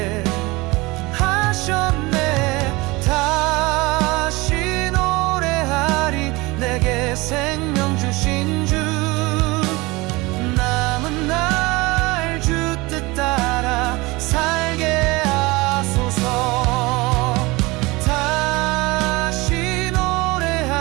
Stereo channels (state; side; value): quieter; left; 23.0 dB